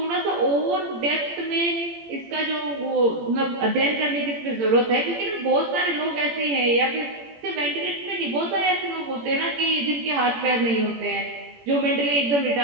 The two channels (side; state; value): left; late; 18 ms